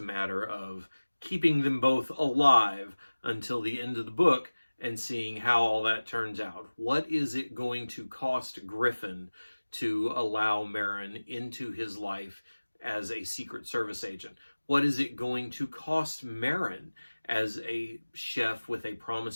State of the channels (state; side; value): inverted; both; correlation -1.00